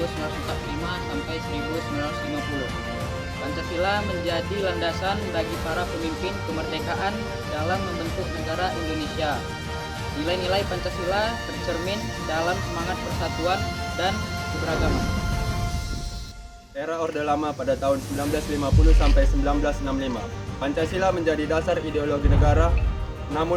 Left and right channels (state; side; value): identical; both; correlation 1.00